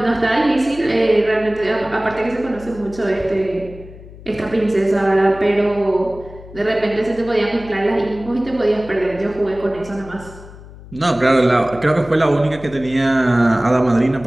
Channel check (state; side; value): noise; left; hum, 18 dB below the sound